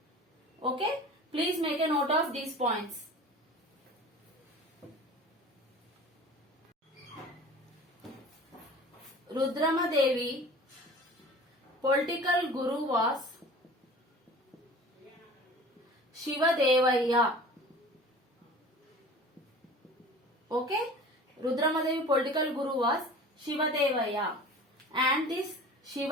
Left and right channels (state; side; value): normal; both; correlation 0.41